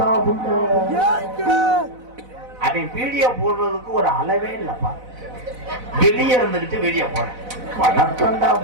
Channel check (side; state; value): left; late; 4.0 ms